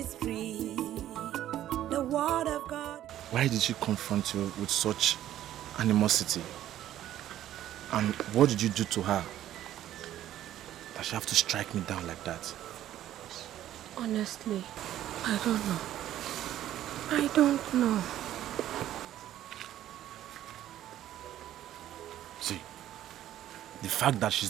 free. The word of God. Why did she confront you with such animosity? And what did you do to her that she have to strike me down like that? Honestly, I don't know. I don't know. See, the fact that she's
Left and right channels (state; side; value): quieter; left; 12.5 dB